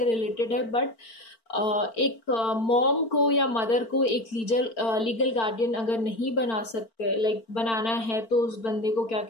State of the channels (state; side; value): late; right; 4.4 ms